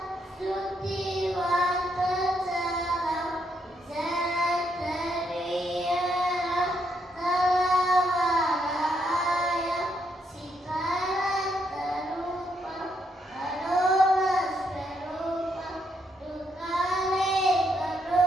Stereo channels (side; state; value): both; normal; correlation 0.76